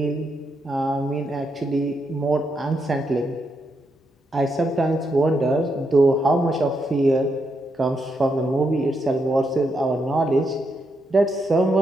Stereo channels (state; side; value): normal; both; correlation 0.81